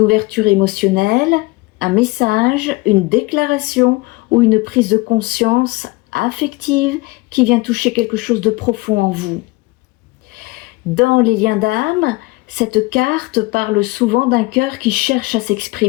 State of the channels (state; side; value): quieter; right; 23.1 dB